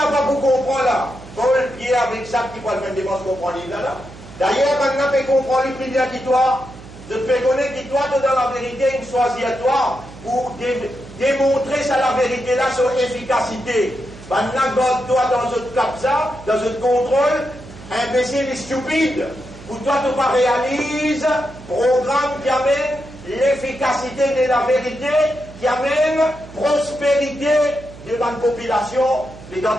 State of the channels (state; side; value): noise; right; hum, 17 dB below the sound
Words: pas pour comprendre là, Paul Pierre avec ça qui va le faire dépense comprendre livre là. D'ailleurs, maintenant tu comprends le prix qui toi. Je te fais connaître que toi tu dans la vérité une choisie à toi pour démontrer ça la vérité là sur efficacité. Maintenant toi dans ce cap ça, dans ce contrôle, imbécile et stupide. Pour toi tu pas réalise programme qui amène l'efficacité de la vérité, qui amène prospérité de la population. Les dents